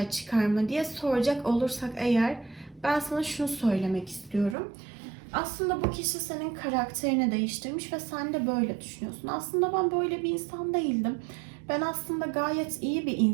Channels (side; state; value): left; drops out; at 4.5 s